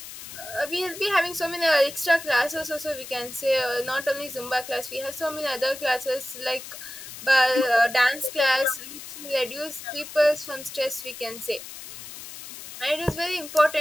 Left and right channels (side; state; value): left; noise; hiss, 12 dB below the sound